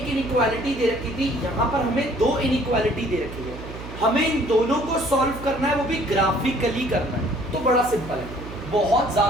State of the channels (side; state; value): right; noise; hum, 12 dB below the sound